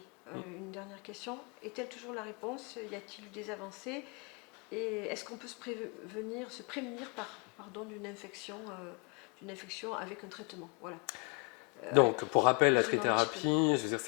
une dernière question. Est-elle toujours la réponse? Y a-t-il eu des avancées? Et est-ce qu'on peut se prémunir d'une infection avec un traitement? Voilà. Donc, pour rappel, la trithérapie, je veux dire,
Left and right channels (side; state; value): right; quieter; 34.8 dB